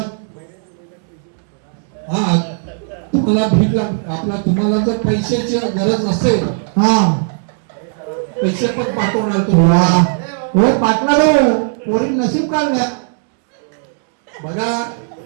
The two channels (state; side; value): silent; left; digital silence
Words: हा तुम्हाला भीक आपला तुम्हाला जर पैशाची गरज असेल हा पैसे पण पाठवणार वा तुम्हाला हो पाटला रो पोरी नशीब काढल्या बघा